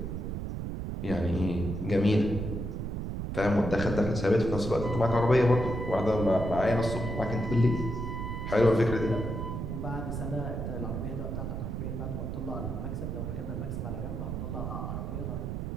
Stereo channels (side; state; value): right; noise; rumble, 4 dB below the sound